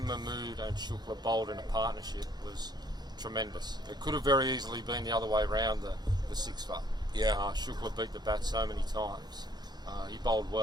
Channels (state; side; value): normal; both; correlation 0.63